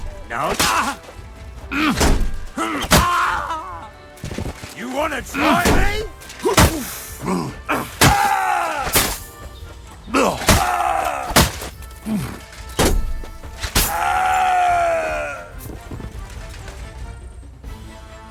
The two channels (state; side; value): identical; both; correlation 1.00